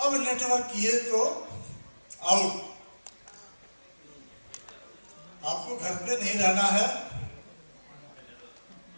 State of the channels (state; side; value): inverted; both; correlation -1.00